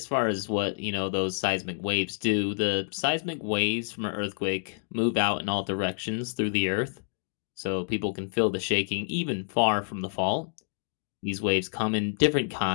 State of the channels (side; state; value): right; silent; digital silence